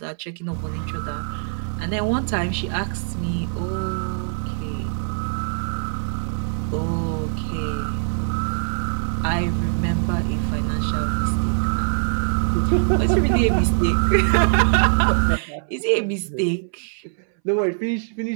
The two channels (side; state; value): left; silent; 64 dB below the other